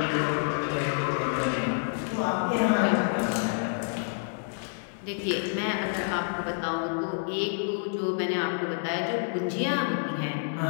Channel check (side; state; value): right; silent; 59 dB below the other